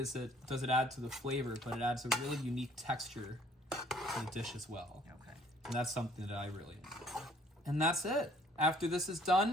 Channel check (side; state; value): both; normal; correlation 0.59